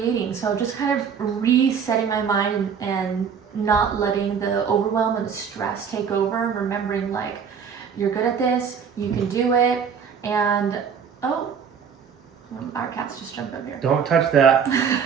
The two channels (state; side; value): quieter; left; 6.9 dB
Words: So just kind of resetting my mind and not letting the overwhelm and the stress take over, and remembering like, you're good at this, you can do it, and our cats just jumped up here. Don't touch that.